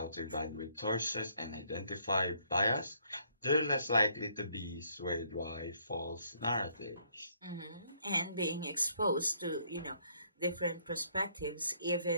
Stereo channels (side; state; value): both; inverted; correlation -0.68